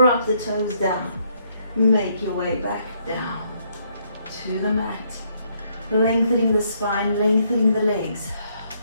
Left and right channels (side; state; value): both; inverted; correlation -0.71